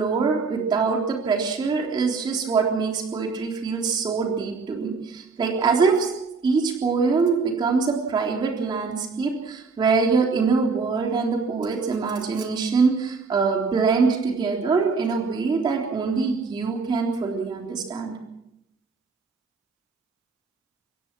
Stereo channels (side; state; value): left; quieter; 4.6 dB